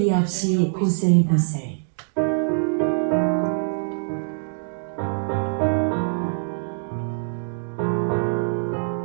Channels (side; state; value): left; silent; digital silence